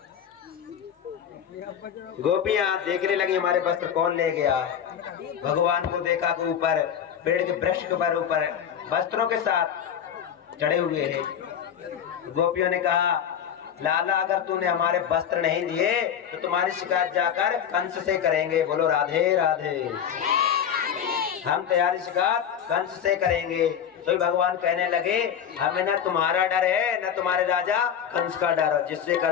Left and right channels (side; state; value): right; quieter; 8.6 dB